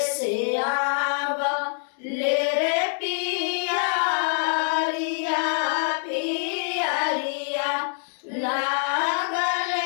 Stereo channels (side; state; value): right; silent; digital silence